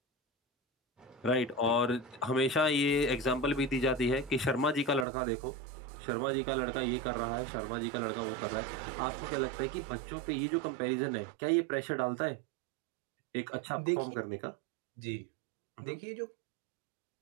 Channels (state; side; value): drops out; left; at 5.1 s